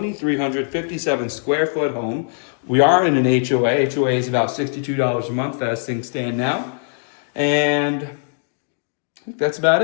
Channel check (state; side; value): silent; right; digital silence